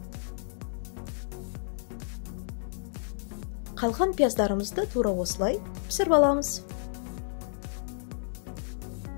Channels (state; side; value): silent; right; digital silence